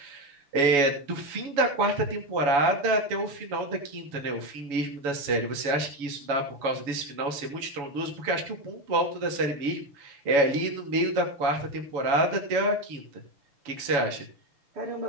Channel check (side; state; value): left; late; 7.1 ms